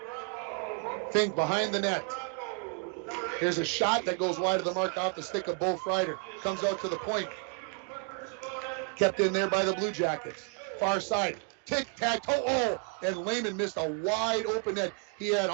Fink behind the net. Here's a shot that goes wide of the mark off the stick of Bo Freider. Comes out to the point. Kept in there by the Blue Jackets. Far side. Tic-tac-toe. Oh, and Lehman missed a wide open net. He had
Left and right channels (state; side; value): quieter; left; 33.6 dB